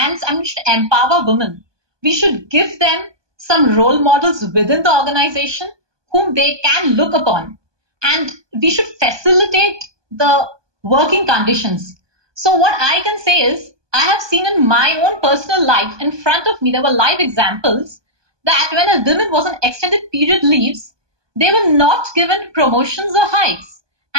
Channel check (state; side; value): late; left; 1.2 ms